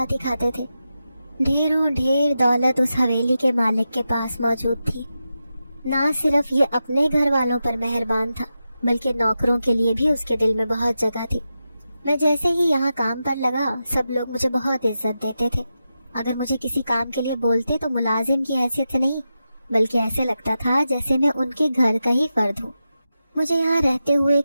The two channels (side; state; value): both; inverted; correlation -0.90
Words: ہی کھاتے تھے۔ ڈھیروں ڈھیر دولت اس حویلی کے مالک کے پاس موجود تھی۔ نہ صرف یہ اپنے گھر والوں پر مہربان تھا بلکہ نوکروں کے لیے بھی اس کے دل میں بہت جگہ تھی۔ میں جیسے ہی یہاں کام پر لگا سب لوگ مجھے بہت عزت دیتے تھے۔ اگر مجھے کسی کام کے لیے بولتے تو ملازم کی حیثیت سے نہیں، بلکہ ایسے لگتا تھا جیسے میں ان کے گھر کا ہی فرد ہوں۔ مجھے یہاں رہتے ہوئے